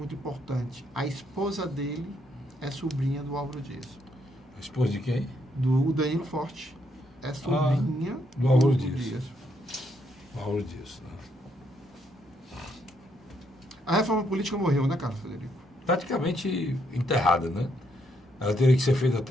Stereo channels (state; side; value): normal; both; correlation 0.74